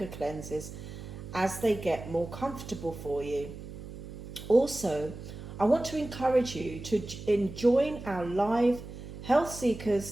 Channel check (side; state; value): right; noise; hum, 12 dB below the sound